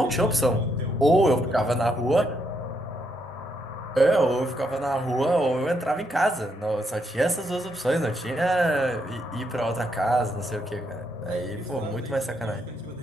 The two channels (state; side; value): normal; both; correlation 0.77